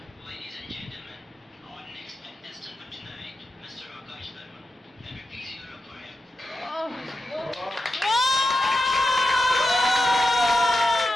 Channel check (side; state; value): both; normal; correlation 0.89